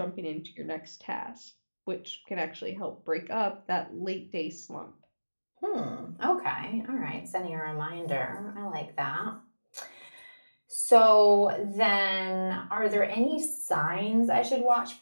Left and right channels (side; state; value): both; inverted; correlation -1.00